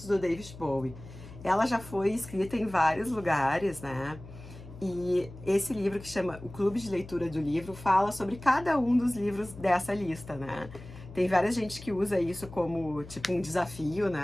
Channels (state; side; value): noise; left; hum, 16 dB below the sound